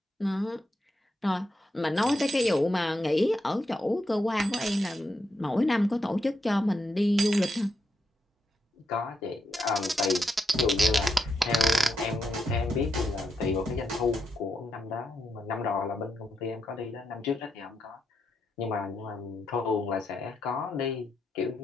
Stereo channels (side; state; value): both; normal; correlation 0.83